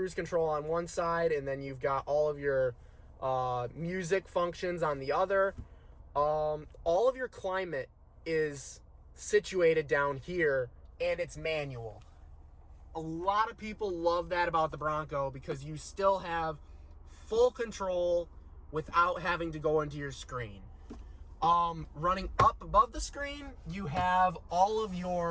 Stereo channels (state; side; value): identical; both; correlation 1.00